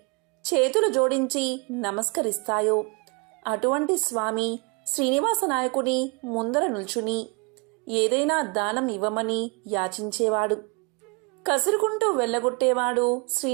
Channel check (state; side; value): quieter; left; 30.4 dB